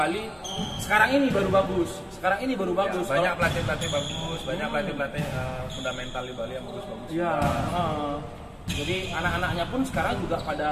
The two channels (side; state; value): both; identical; correlation 1.00